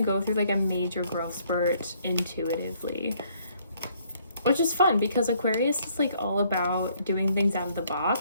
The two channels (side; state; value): both; inverted; correlation -0.65